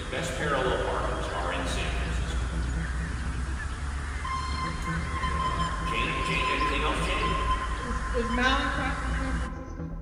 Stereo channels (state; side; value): identical; both; correlation 1.00